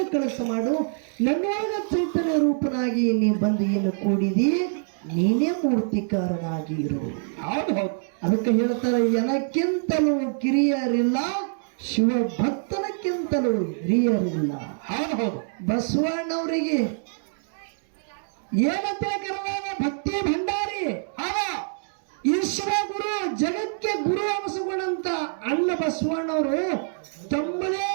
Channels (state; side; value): silent; left; digital silence